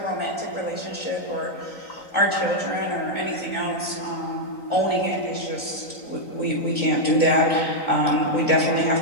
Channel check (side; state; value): right; late; 3.9 ms